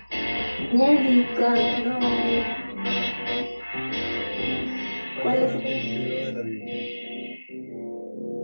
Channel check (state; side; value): inverted; both; correlation -1.00